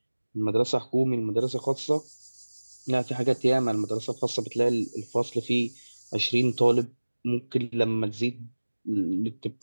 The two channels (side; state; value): both; inverted; correlation -1.00